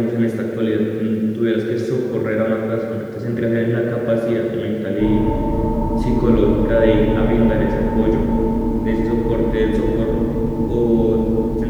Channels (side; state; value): both; identical; correlation 1.00